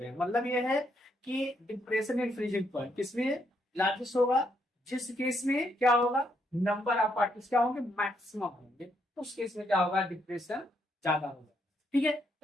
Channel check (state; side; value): normal; both; correlation 0.75